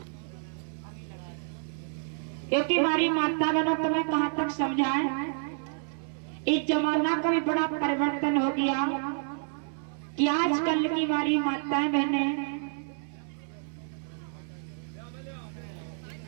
क्योंकि हमारी माता बहनों तुम्हें कहां तक समझाएं। इस जमाना का भी बड़ा परिवर्तन हो गया कि आजकल की हमारी माताएं बहनें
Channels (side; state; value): left; silent; 58 dB below the other